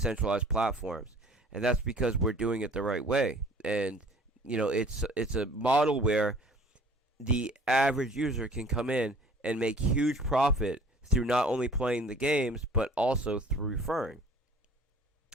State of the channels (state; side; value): normal; both; correlation 0.50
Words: platforms. And that's because we're doing it the right way. And, it's a model where the average user can come in and make huge profit through not only playing the games, but also through referring.